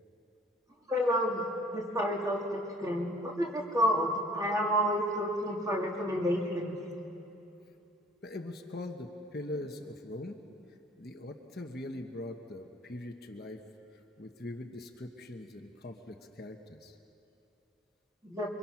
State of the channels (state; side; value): normal; both; correlation 0.54